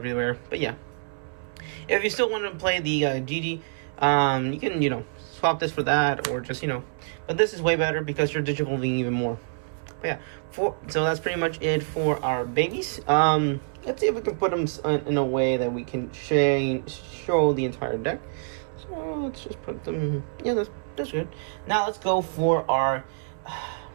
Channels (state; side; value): silent; left; 57 dB below the other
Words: But yeah, if you still want to play the GG, you can, you know, swap this for that or just, you know. But this is way better because you're digivolving even more. But yeah, so that's pretty much it for our babies. Let's see if we can put them in a way that we can show the entire deck. So let's just put them. Yeah, that's good. Now let's go for our